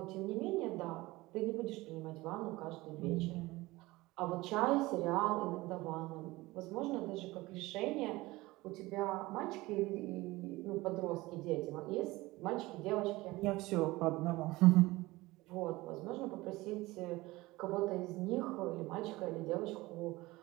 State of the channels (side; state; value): left; quieter; 20.2 dB